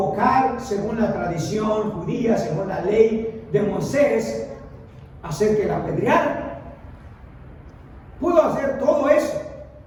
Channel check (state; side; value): identical; both; correlation 1.00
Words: según la tradición judía, según la ley de Moisés, hacer que la apedrearan. Pudo hacer todo eso,